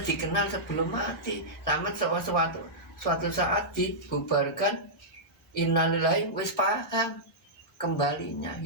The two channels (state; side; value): normal; both; correlation -0.12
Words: dikenal sebelum mati. Sama suatu saat dibubarkan. Innalillahi wis paham kembalinya